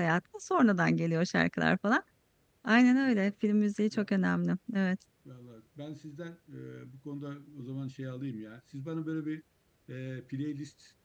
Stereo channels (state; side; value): identical; both; correlation 1.00